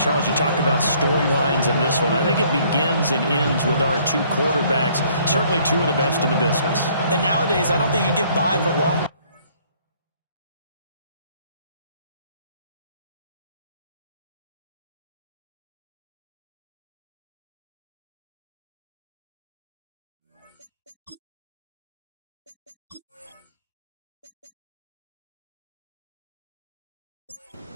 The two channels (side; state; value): both; inverted; correlation -0.61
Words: you talk about storylines in this one. I think it begins and ends with our two quarterbacks, certainly two of the best in the business. And nowadays, I don't think you can get by for long.